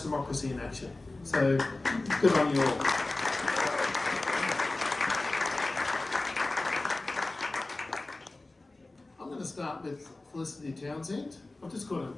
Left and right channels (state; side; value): quieter; right; 3.0 dB